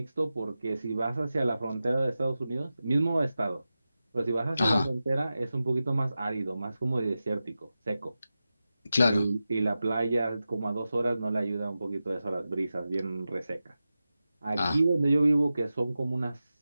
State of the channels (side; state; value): both; inverted; correlation -0.93